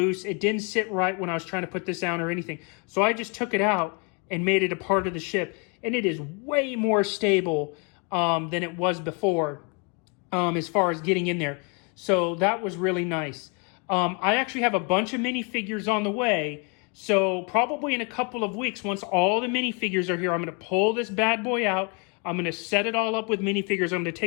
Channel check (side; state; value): right; quieter; 34.0 dB